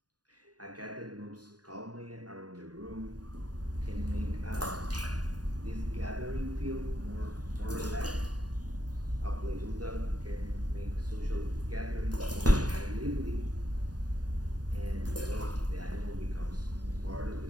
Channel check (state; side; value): late; left; 0.68 ms